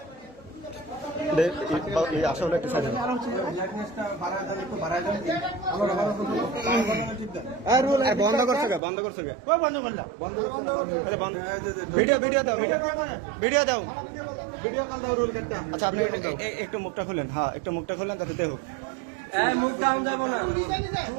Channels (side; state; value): left; drops out; at 8.8 s